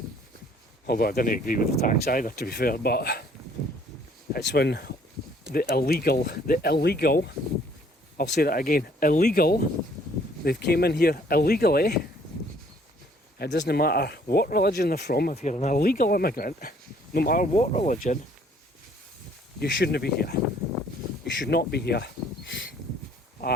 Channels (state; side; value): normal; both; correlation 0.61